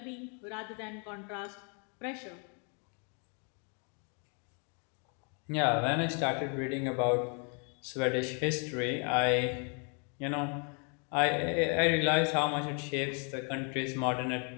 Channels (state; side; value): quieter; right; 38.0 dB